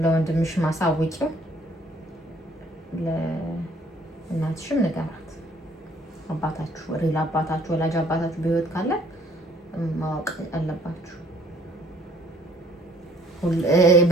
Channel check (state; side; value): normal; both; correlation 0.60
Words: ለወንድምሽ ማሳውቂው ለእናትሽም ንገራት። አባታችሁ ሪል አባታችሁ ወላጅ አባታችሁ በህይወት ካለ ማወቅ አለባችሁ።